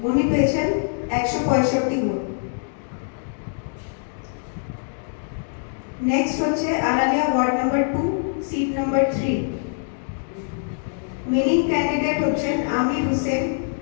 উনি পেয়েছেন 165 ভোট। নেক্সট হচ্ছে Aralia ward number 2, seat number 3, winning candidate হচ্ছেন আমির হোসেন,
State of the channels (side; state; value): right; silent; digital silence